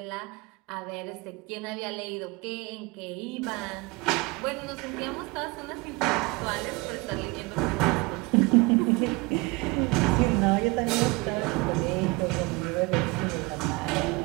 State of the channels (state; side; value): quieter; left; 25.4 dB